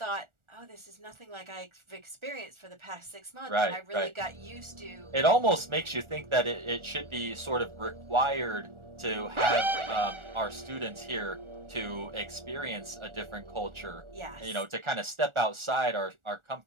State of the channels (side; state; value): left; late; 1.4 ms